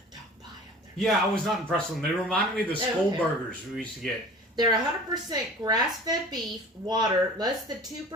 don't buy them. Yeah, I was not impressed with them. They reminded me of the school burgers we used to get. They're 100% grass-fed beef, water, less than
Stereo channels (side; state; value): both; normal; correlation 0.42